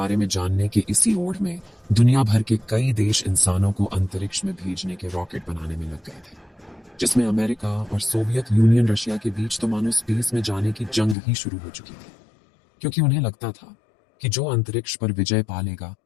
में जानने के इसी ओढ़ में दुनिया भर के कई देश इंसानों को अंतरिक्ष में भेजने के रॉकेट बनाने में लग गए थे, जिसमें अमेरिका और सोवियत यूनियन रशिया के बीच तो मानो स्पेस में जाने की जंग ही शुरू हो चुकी थी, क्योंकि उन्हें लगता था कि जो अंतरिक्ष पर विजय पा लेगा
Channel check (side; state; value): right; drops out; at 11.2 s